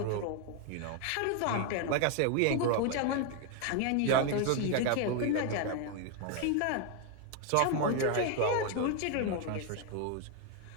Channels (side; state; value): both; different; correlation 0.01